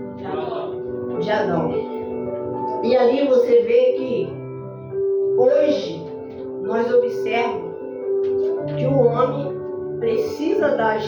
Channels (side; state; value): both; identical; correlation 1.00